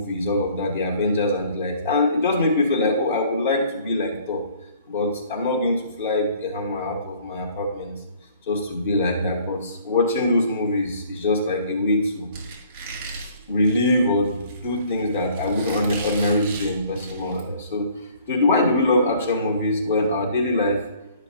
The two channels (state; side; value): inverted; both; correlation -0.56